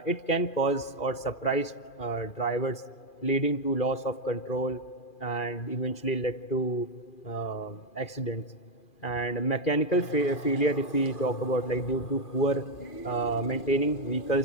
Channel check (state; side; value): late; right; 2.4 ms